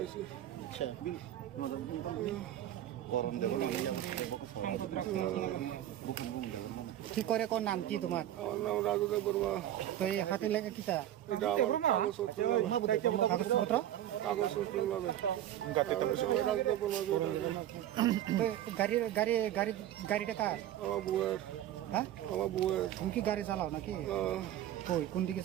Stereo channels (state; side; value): quieter; left; 12.2 dB